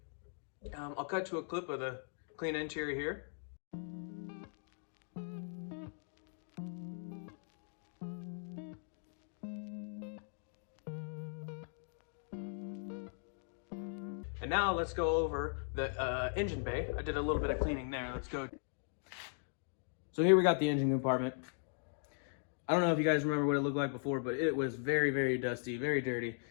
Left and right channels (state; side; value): silent; right; digital silence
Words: I'll cut to a clip of the clean interior here. And now let's go over the engine bay. I did a little bit of cleaning there. Let's go. So here we got the engine compartment. I don't know if you guys remember what it looked like before, but it was very, very dusty, very dirty.